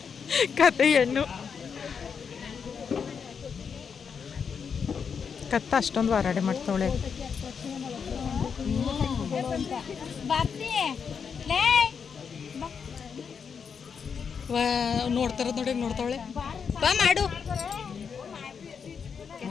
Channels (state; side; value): quieter; right; 6.4 dB